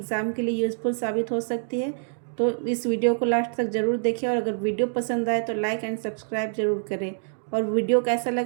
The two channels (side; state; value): left; silent; digital silence